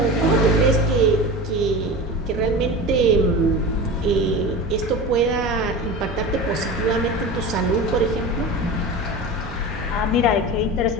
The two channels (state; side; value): normal; both; correlation 0.30